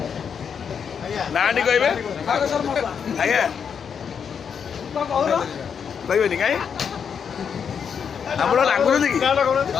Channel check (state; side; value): quieter; right; 7.0 dB